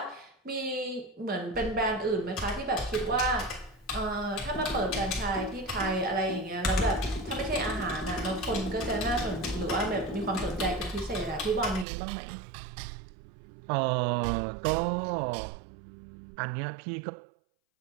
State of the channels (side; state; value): left; drops out; at 11.9 s